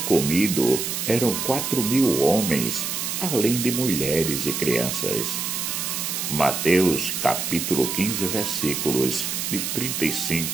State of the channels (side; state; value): right; noise; hiss, 2 dB below the sound